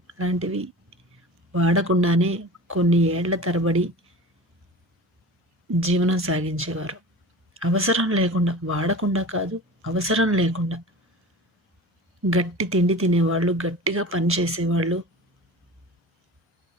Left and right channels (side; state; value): both; normal; correlation 0.36